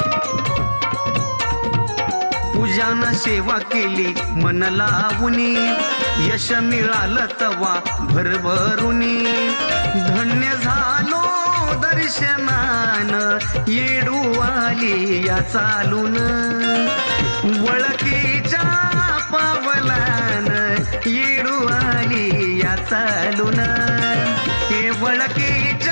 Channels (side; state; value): both; inverted; correlation -1.00